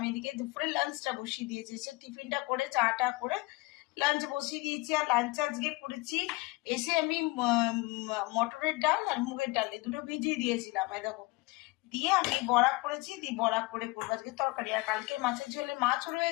এদিকে দুপুরে লাঞ্চটা বসিয়ে দিয়েছি, সে টিফিনটা করে চাটা করে লাঞ্চ বসিয়ে দিয়েছি। আর লাঞ্চ আজকে করেছি এসে আমি মটরের ডাল আর মুগের ডাল এই দুটো ভিজিয়ে দিয়েছিলাম, দেখো দিয়ে আমি বড়া করেছি, দিয়ে বড়া করে করবো আজকে তরকারি। আর কালকে মাছের ঝোলে মাছ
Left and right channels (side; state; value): right; quieter; 23.1 dB